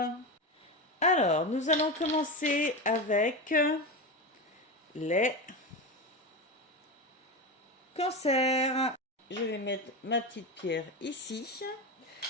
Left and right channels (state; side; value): normal; both; correlation 0.19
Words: Alors, nous allons commencer avec les cancers. Je vais mettre ma petite pierre ici.